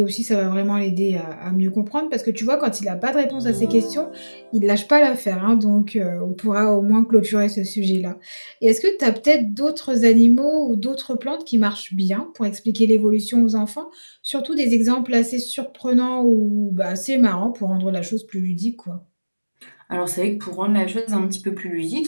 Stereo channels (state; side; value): inverted; both; correlation -1.00